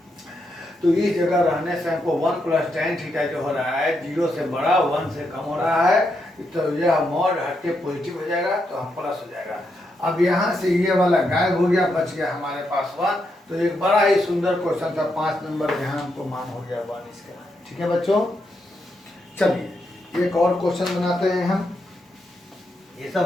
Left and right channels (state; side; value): normal; both; correlation 0.81